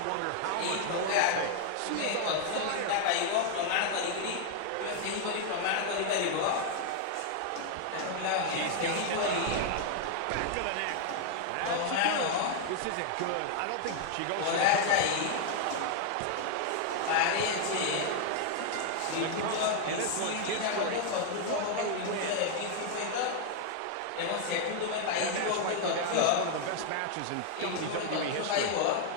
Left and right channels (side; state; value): both; different; correlation 0.00